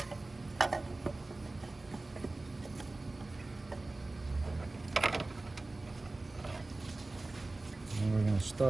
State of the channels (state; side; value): quieter; left; 3.1 dB